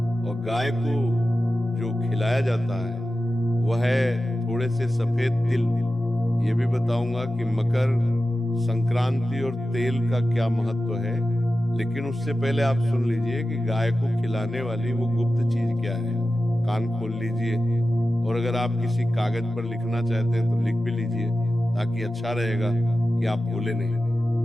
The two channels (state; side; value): normal; both; correlation 0.93